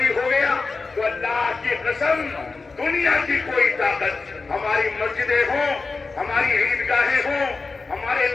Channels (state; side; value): quieter; right; 4.1 dB